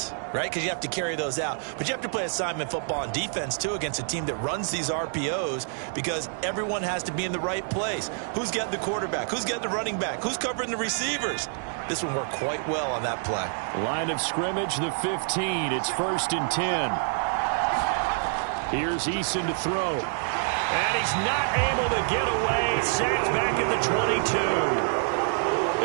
right? Because you have to carry those out. But you have to play assignment football on defense, too, against a team that runs these RPOs because everyone has to be in the right place. Who's getting the quarterback? Who's getting the running back? Who's covering the receivers? This one worked quite well on that play. Line of scrimmage, the 15. It's 1st and 10. Here's Eason to throw. And he's not able to get away. Sacked back at the 22.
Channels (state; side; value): silent; left; 60 dB below the other